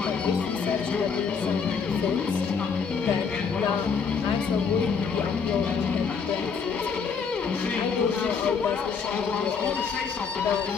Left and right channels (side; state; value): right; quieter; 5.8 dB